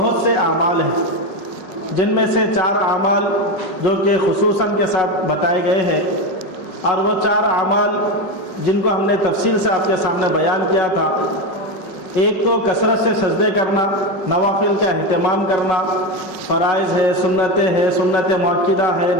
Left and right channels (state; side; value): late; right; 5.4 ms